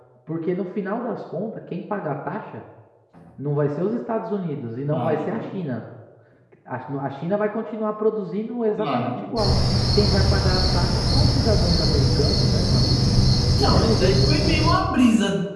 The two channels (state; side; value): identical; both; correlation 1.00